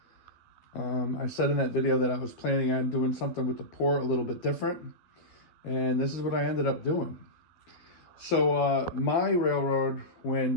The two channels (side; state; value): right; late; 12 ms